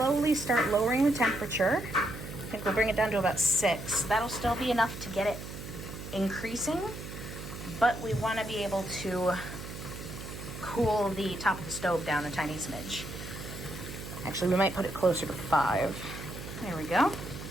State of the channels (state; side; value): noise; right; hum, 10 dB below the sound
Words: start lowering the temperature. I think we'll bring it down to about 6. That'll still be enough to get it increasing, but we want to be able to cool the top of the stove down a tiny smidge. Actually, we might put it closer to 5. There we go.